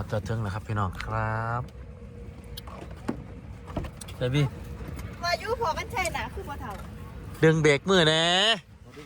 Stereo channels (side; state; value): both; identical; correlation 1.00